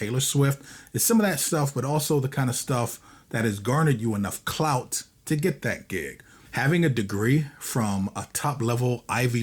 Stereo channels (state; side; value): identical; both; correlation 1.00